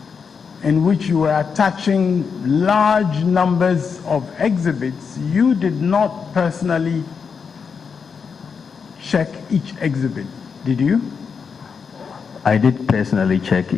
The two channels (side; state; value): right; quieter; 5.9 dB